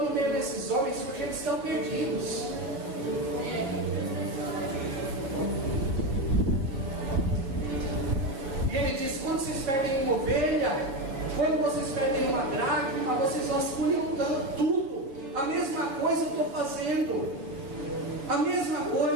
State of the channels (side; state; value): left; late; 7.4 ms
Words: no meio desses homens porque eles estão perdidos. E ele diz: quando vocês perdem uma ovelha, quando vocês perdem uma dracma, vocês vasculham tudo. A mesma coisa eu estou fazendo. A mesma